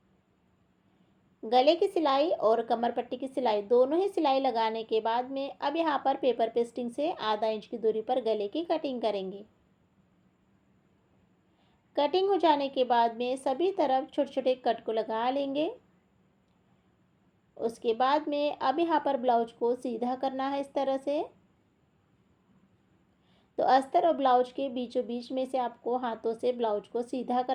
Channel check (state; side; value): identical; both; correlation 1.00